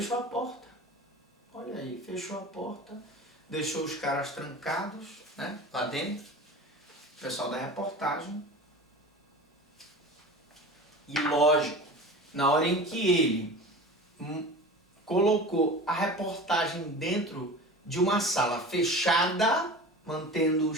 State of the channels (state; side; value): normal; both; correlation 0.35